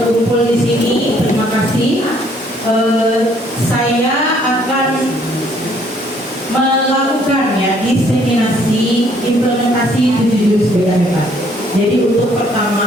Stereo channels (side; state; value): both; normal; correlation 0.64